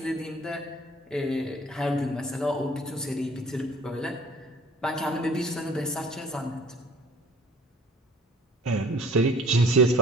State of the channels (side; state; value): both; normal; correlation 0.51